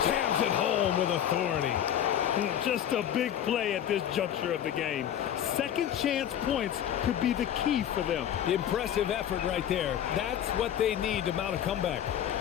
jams it home with authority. Just a big play at this juncture of the game. Second chance points could be the key for them. Impressive effort right there. That's what they need to mount a comeback.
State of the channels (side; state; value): right; quieter; 10.2 dB